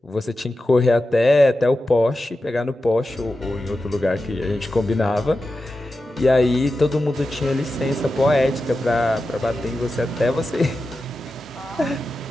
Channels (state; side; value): normal; both; correlation 0.92